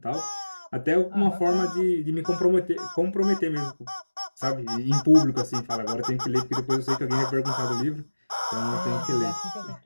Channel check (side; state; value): both; inverted; correlation -1.00